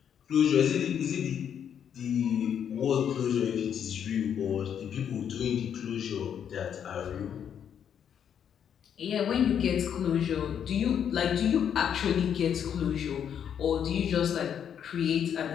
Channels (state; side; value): quieter; right; 8.6 dB